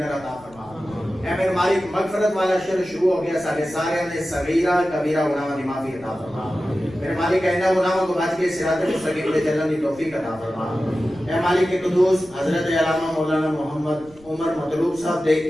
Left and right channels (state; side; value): noise; left; rumble, 25 dB below the sound